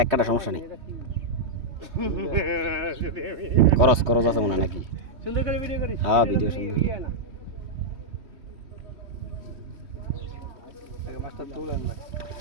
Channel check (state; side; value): late; left; 3.1 ms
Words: কাটা সমস্যা নেই করস আছে মনে হয় নাকি সুন্দর করে ভিডিও করিস হ্যাঁ ভিডিও সুন্দর আগে মাছটা তুলেন ভাই